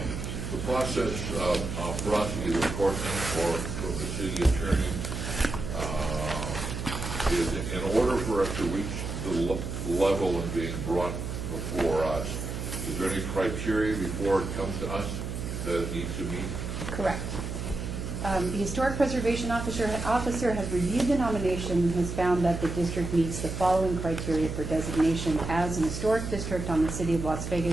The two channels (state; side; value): noise; right; hum, 5 dB below the sound